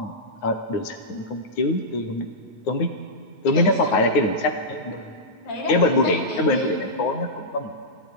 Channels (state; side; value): late; right; 9.5 ms